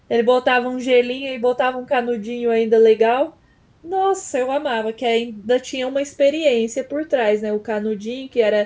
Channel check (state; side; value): identical; both; correlation 1.00